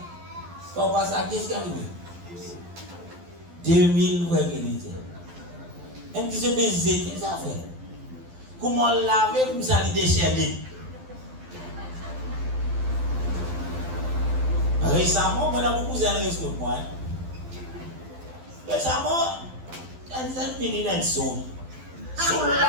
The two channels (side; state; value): left; late; 12 ms